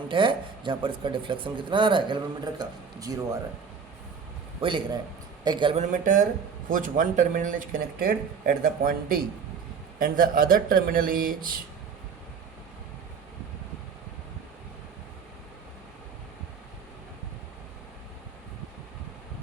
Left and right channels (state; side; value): quieter; left; 6.1 dB